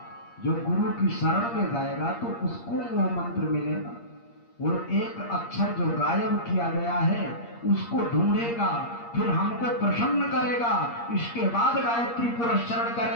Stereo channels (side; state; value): right; late; 8.5 ms